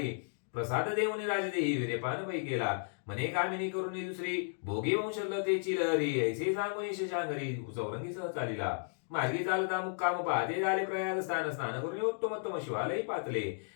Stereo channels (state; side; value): silent; right; digital silence